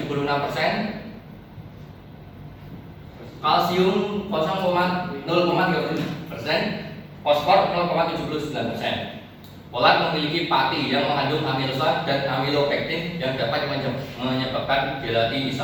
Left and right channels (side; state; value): both; identical; correlation 1.00